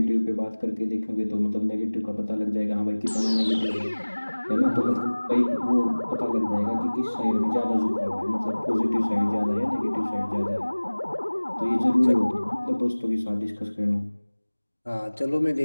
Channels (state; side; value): inverted; both; correlation -1.00